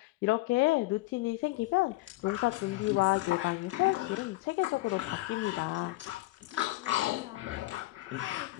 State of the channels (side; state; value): right; quieter; 20.0 dB